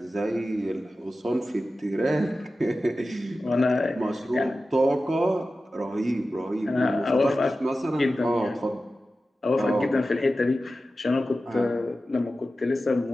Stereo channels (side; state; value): both; normal; correlation 0.94